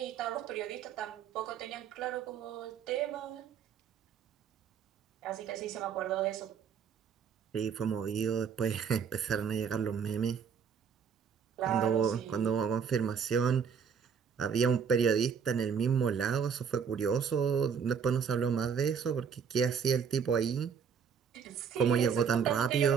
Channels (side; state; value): left; quieter; 6.9 dB